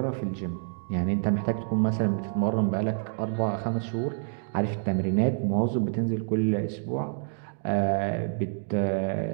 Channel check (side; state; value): left; silent; digital silence